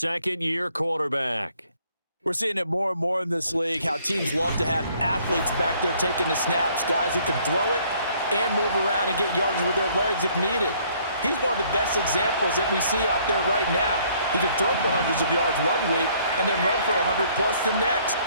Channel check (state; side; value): inverted; both; correlation -0.62